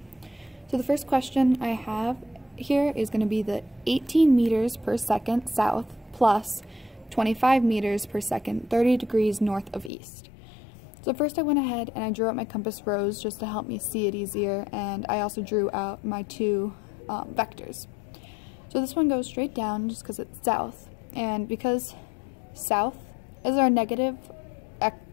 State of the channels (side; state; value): right; drops out; at 9.9 s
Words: So the first question I have here is going to be the 18 meters per second south plus 25 meters per second 30 degrees north of east. So first I went ahead and I drew out my compass rose just to help me see it easier, and I also drew out my two vectors. So this one goes straight down just because it's south, and because south is our negative